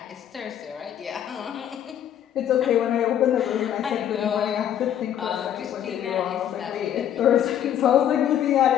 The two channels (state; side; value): quieter; right; 10.3 dB